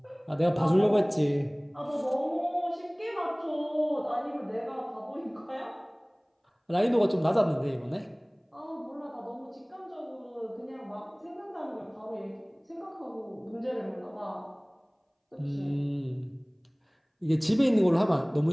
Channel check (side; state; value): both; identical; correlation 1.00